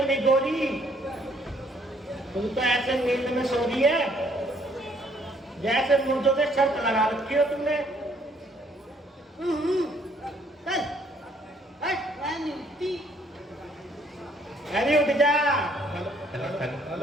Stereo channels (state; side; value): normal; both; correlation 0.65